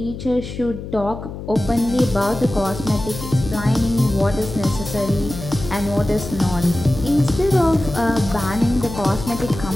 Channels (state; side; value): noise; left; hum, 10 dB below the sound